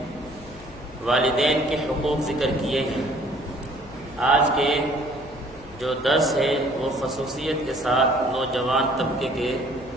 والدین کے حقوق ذکر کیے ہیں۔ آج کے جو درس ہے وہ خصوصیت کے ساتھ نوجوان طبقے کے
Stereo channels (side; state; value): left; noise; hum, 20 dB below the sound